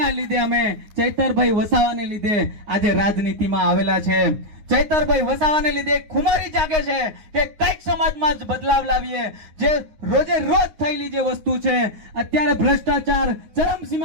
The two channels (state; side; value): late; left; 9.6 ms